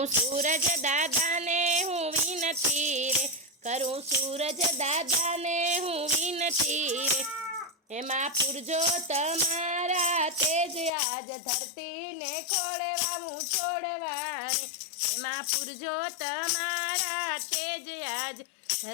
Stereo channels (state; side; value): drops out; right; at 10.9 s